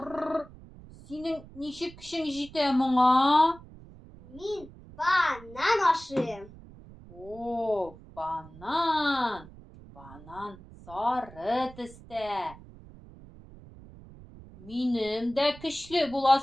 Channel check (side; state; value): right; noise; rumble, 19 dB below the sound